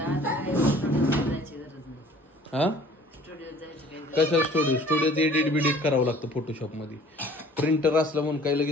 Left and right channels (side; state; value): both; normal; correlation 0.51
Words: हा कशा स्टुडिओत एडिट करावं लागतं फोटोशॉप मध्ये. प्रिंटर असलं म्हणून काय